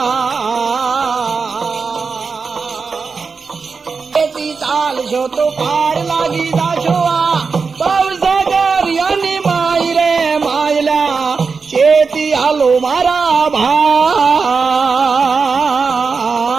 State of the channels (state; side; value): quieter; left; 4.9 dB